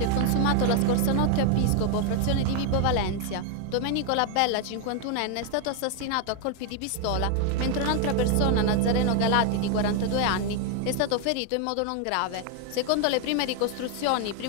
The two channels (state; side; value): different; both; correlation 0.01